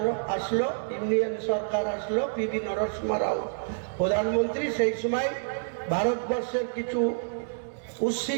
আসলো, ইন্ডিয়ান সরকার আসলো, পিভি নরসিংহ রাও প্রধানমন্ত্রী, সেই সময় ভারতবর্ষের কিছু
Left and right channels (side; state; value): left; silent; digital silence